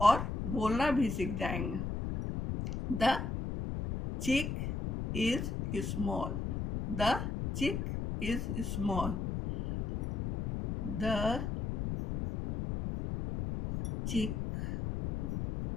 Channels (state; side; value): noise; left; rumble, 3 dB below the sound